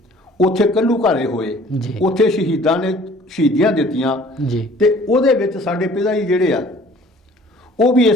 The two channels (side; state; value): both; normal; correlation 0.52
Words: ਉੱਥੇ ਕੱਲੂ ਘਾਰੇ ਹੋਏ, ਉੱਥੇ ਸ਼ਹੀਦਾਂ ਨੇ ਸ਼ਹੀਦੀਆਂ ਦਿੱਤੀਆਂ ਜੀ, ਤੇ ਉਹਦੇ ਵਿੱਚ ਸਾਡੇ ਪਿਤਾ ਜੀ ਜਿਹੜੇ ਆ ਉਹ ਵੀ